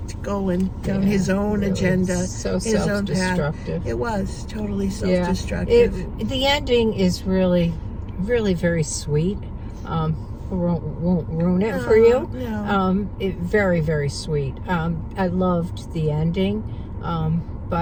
going down his own agenda, so his own path. It was totally self-destructive. The ending is really, really very sweet. Won't ruin it for you. No. Very, very sweet. I loved the ending,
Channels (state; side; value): identical; both; correlation 1.00